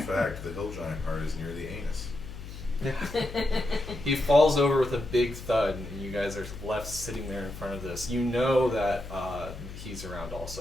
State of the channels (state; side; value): noise; left; hum, 11 dB below the sound